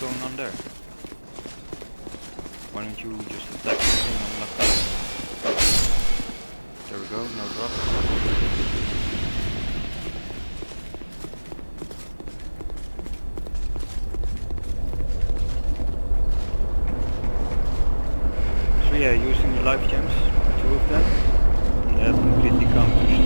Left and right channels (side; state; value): both; inverted; correlation -1.00